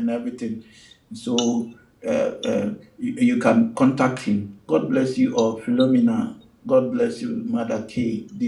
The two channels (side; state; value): both; identical; correlation 1.00